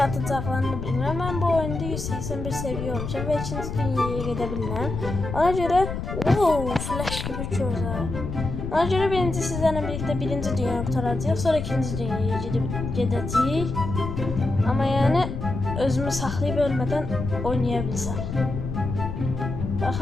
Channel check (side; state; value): left; noise; rumble, 5 dB below the sound